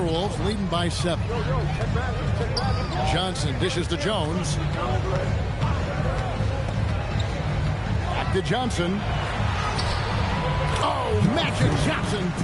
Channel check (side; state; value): both; identical; correlation 1.00